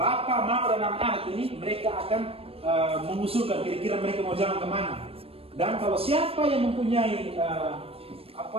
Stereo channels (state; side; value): late; left; 0.28 ms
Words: Mama, dan anak-anak ini mereka akan mengusulkan kira-kira mereka mau jalan kemana. Dan kalau siapa yang mempunyai